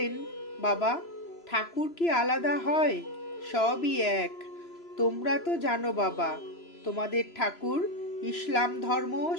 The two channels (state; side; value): late; right; 3.0 ms